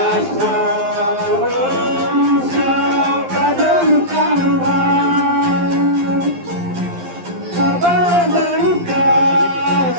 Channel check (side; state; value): left; late; 11 ms